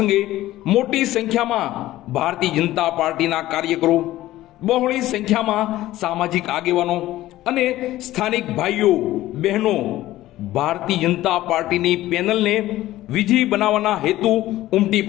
મોટી સંખ્યામાં ભારતીય જનતા પાર્ટીના કાર્યકરો, બહોળી સંખ્યામાં સામાજિક આગેવાનો અને સ્થાનિક ભાઈઓ બહેનો ભારતીય જનતા પાર્ટીની પેનલને વિજયી બનાવવાના હેતુ ઉમટી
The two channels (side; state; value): right; quieter; 15.5 dB